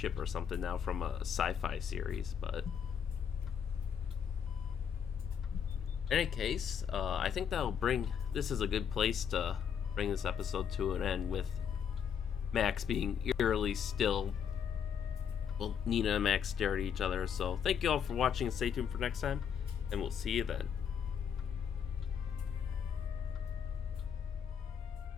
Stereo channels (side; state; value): right; quieter; 7.8 dB